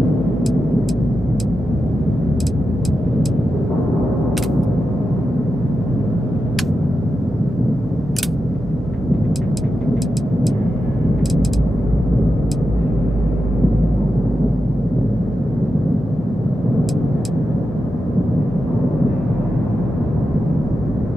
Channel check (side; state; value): both; normal; correlation 0.89